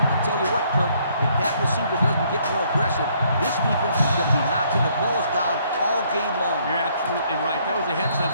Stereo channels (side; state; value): both; inverted; correlation -0.67